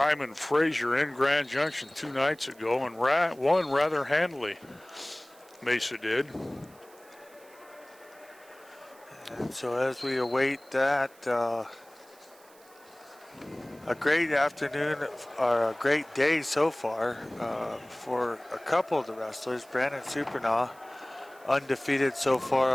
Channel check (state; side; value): noise; right; hiss, 26 dB below the sound